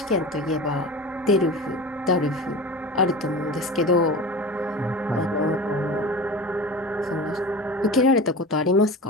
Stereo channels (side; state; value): both; normal; correlation 0.32